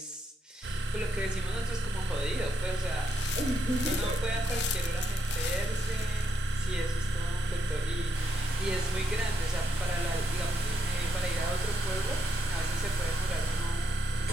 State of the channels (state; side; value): normal; both; correlation 0.79